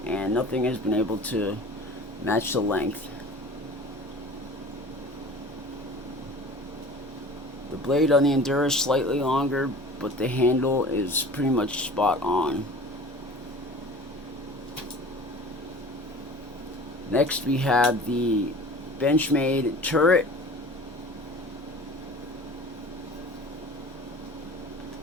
and nothing has been able to match the length. The blade on the Endura is slightly longer, but the handle is pretty much spot on. Next, we have the Benchmade turret.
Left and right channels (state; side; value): normal; both; correlation 0.42